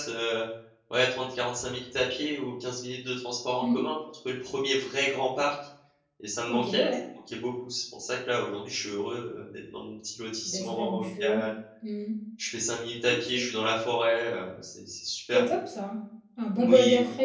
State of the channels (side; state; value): both; identical; correlation 1.00